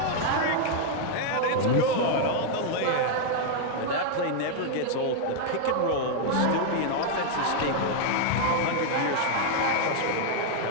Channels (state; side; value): different; both; correlation 0.00